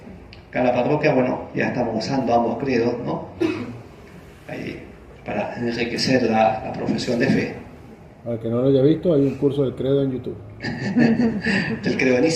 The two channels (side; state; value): both; identical; correlation 1.00